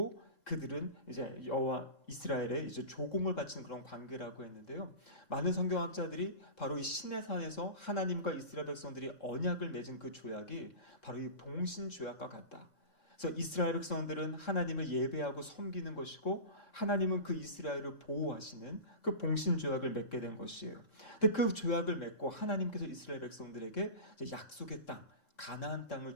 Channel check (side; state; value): right; late; 3.7 ms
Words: 그들은 이제 여호와 이스라엘에 이제 조공을 바치는 그런 관계라고 했는데요. 많은 성경학자들이 바로 이 시내산에서 하나님과 이스라엘 백성들이 언약을 맺은 그 조약이 바로 이 동신 조약과 같다. 그래서 이스라엘 백성들은 하나님을 예배하고 섬기는 것이고 하나님은 그 이스라엘을 보호하시는 그 봉신 조약을 맺게 된 것이에요. 근데 그 조약을 맺고 하나님께서 이스라엘 백성들에게 약속의 땅, 가나안